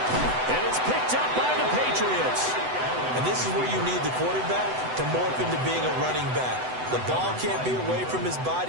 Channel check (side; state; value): left; late; 7.9 ms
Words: And it's picked up by the Patriots. And this is where you need the quarterback to morph into being a running back. The ball can't be away from his